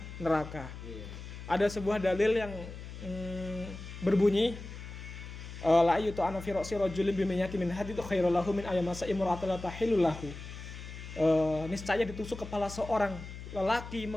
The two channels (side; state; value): left; noise; hum, 11 dB below the sound